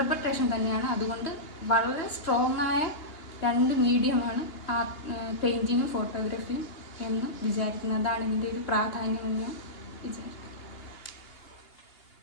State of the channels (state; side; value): late; right; 2.8 ms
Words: തന്നെയാണ്. അതുകൊണ്ട് വളരെ സ്ട്രോങ് ആയ രണ്ട് മീഡിയമാണ് പെയിൻറ്റിങ്ങും ഫോട്ടോഗ്രാഫിയും എന്ന് വിചാരിക്കുന്നത്. അതാണ് ഇതിൻ്റെ ഒരു പ്രാധാന്യം എന്ന് ഞാൻ വിചാരിക്കുന്നു.